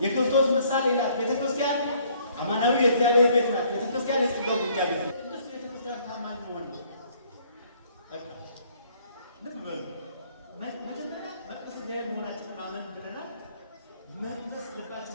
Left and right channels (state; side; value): inverted; both; correlation -0.62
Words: የክርስቶስ ምሳሌ ናት። ቤተክርስቲያን አማናዊ የእግዚአብሔር ቤት ናት። ቤተክርስቲያን የጸጋው ግምጃ ቤት ናት። ቅድስት ቤተክርስቲያን ታማኝ መሆን ነው። ልብ በሉ። መጀመሪያ መቅደስ እግዚአብሔር መሆናችንን ማመን ብለናል። መቅደስ